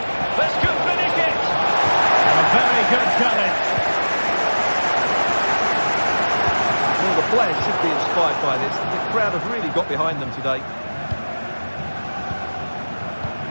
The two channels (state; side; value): inverted; both; correlation -1.00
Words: This could finish it! A very good challenge. Well, the players should be inspired by this. The crowd have really got behind them today.